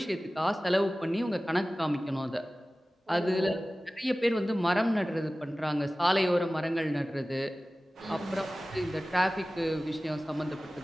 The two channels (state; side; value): normal; both; correlation 0.97